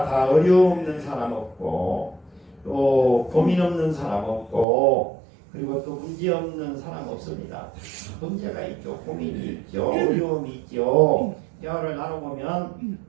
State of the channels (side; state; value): left; drops out; at 4.7 s